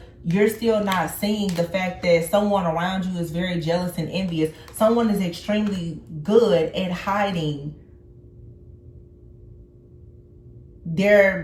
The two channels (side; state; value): both; identical; correlation 1.00